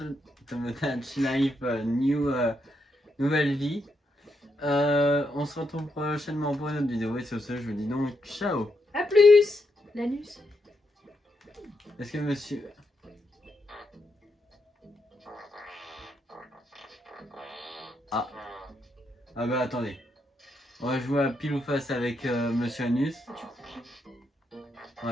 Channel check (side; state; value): both; normal; correlation 0.80